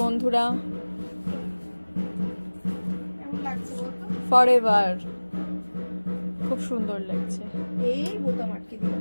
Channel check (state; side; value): inverted; both; correlation -1.00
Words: বন্ধুরা। কেমন লাগছে বলতো? ফরএভার, খুব সুন্দর লাগছে। এই বোতাম আটকে